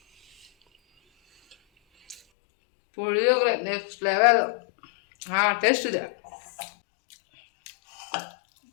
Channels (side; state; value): right; drops out; at 2.2 s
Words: Puliyogare next level. ಟೇಸ್ಟ್ ಇದೆ.